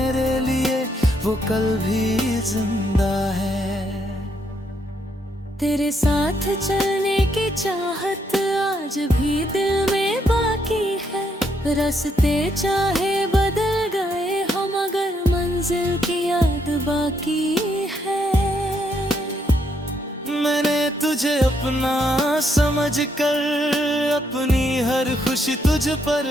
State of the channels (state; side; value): normal; both; correlation 0.75